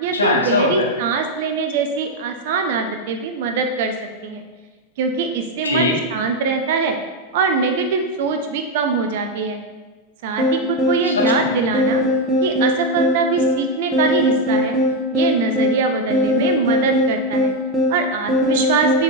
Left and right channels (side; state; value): both; normal; correlation 0.04